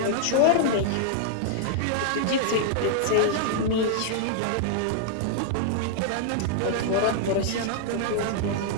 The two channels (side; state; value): both; different; correlation -0.01